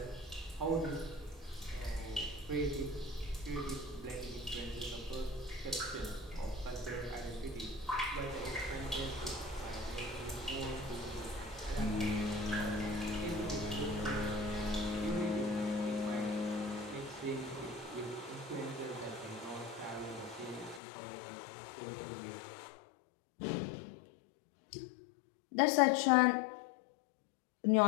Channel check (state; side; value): drops out; right; at 20.8 s